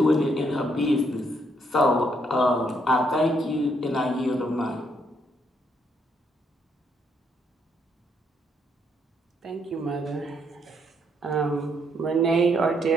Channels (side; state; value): both; normal; correlation 0.73